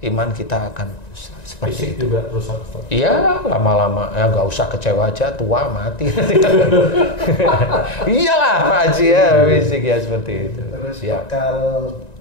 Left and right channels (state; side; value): late; right; 1.9 ms